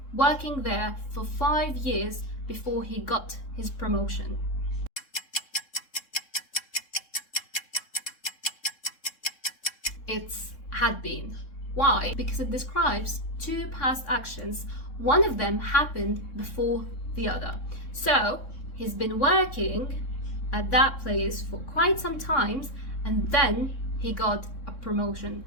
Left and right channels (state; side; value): late; right; 3.7 ms